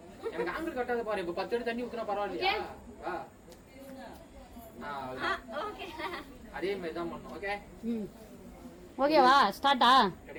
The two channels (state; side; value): identical; both; correlation 1.00